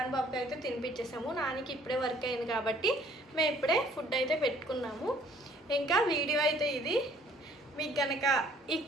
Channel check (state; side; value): normal; both; correlation 0.58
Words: బాబుకి అయితే తినిపించేసాము. నానికి ఇప్పుడే వర్క్ అయింది కాబట్టి మేము ఇప్పుడే ఫుడ్ అయితే పెట్టుకున్నాము. ఇంకా వీడియో అయితే ఇది. మీకు కనుక ఈ